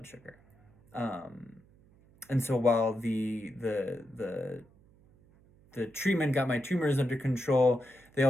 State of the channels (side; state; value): right; noise; hum, 29 dB below the sound